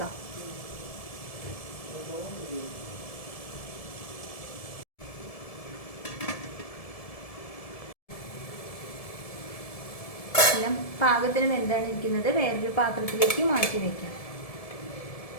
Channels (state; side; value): late; right; 1.7 ms